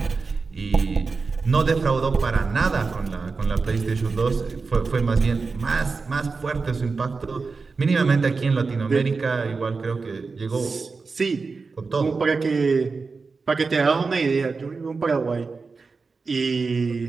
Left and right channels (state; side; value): quieter; left; 4.4 dB